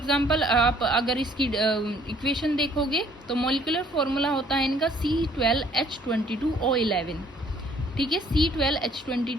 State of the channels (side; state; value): both; normal; correlation 0.60